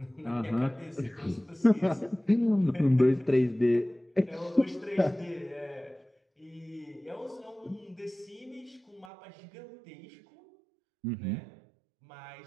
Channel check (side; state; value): left; drops out; at 9.1 s